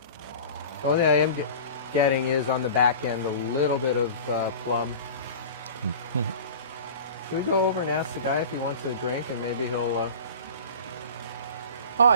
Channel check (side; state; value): both; inverted; correlation -0.37